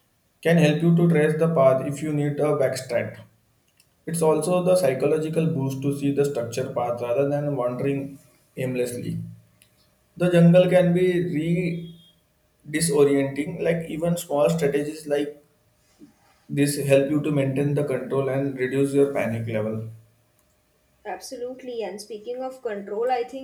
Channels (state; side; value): identical; both; correlation 1.00